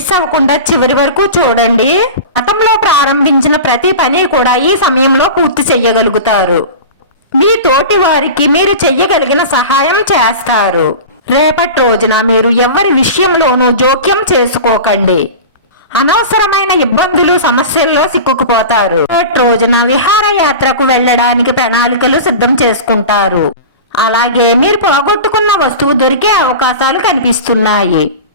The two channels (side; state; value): both; inverted; correlation -0.31